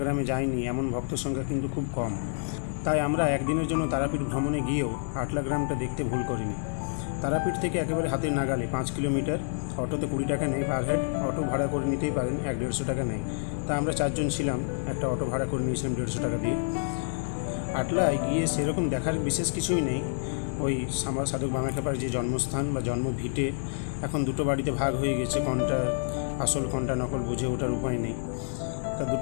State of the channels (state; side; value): silent; right; 59 dB below the other